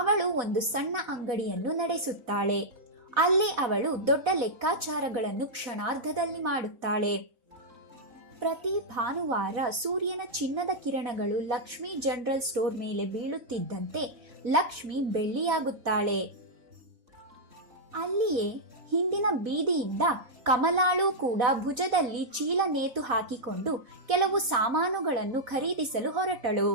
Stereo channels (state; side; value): late; left; 3.9 ms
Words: ಒಂದು ಸಣ್ಣ ಅಂಗಡಿಯನ್ನು ನಡೆಸುತ್ತಾಳೆ. ಅಲ್ಲಿ ಅವಳು ದೊಡ್ಡ ಲೆಕ್ಕಾಚಾರಗಳನ್ನು ಕ್ಷಣಾರ್ಧದಲ್ಲಿ ಮಾಡುತ್ತಾಳೆ. ಪ್ರತಿ ಭಾನುವಾರ ಸೂರ್ಯನ ಚಿನ್ನದ ಕಿರಣಗಳು ಲಕ್ಷ್ಮಿ ಜನರಲ್ ಸ್ಟೋರ್ ಮೇಲೆ ಬೀಳುತ್ತಿದ್ದಂತೆ ಲಕ್ಷ್ಮಿ ಬೆಳ್ಳಿಯಾಗುತ್ತಾಳೆ. ಅಲ್ಲಿಯೇ ಹಿಂದಿನ ಬೀದಿಯಿಂದ ಕಮಲಾಳು ಕೂಡ ಭುಜದಲ್ಲಿ ಚೀಲ ನೇತು ಹಾಕಿಕೊಂಡು ಕೆಲವು ಸಾಮಾನುಗಳನ್ನು ಖರೀದಿಸಲು ಹೊರಟಳು.